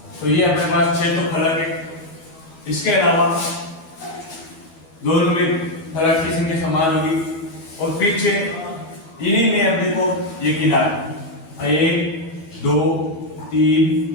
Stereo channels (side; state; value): right; late; 12 ms